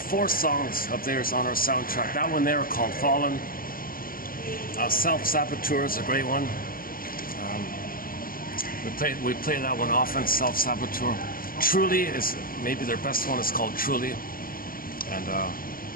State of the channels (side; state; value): right; late; 0.42 ms